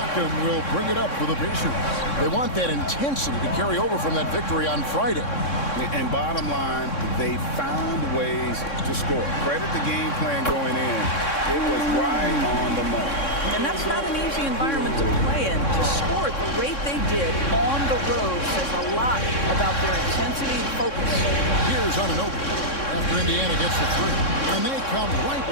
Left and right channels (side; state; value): right; late; 3.6 ms